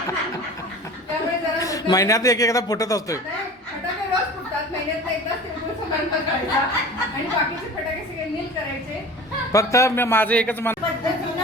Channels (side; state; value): both; normal; correlation 0.38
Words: त्यामुळे जरा महिन्यात एकदा फुटत असतोय। फटाके रोज फुटतात, महिन्यात एकदाच तिळगुळ समारंभ करायचा आणि बाकीचे फटाके सगळे नील करायचे। फक्त माझं एकच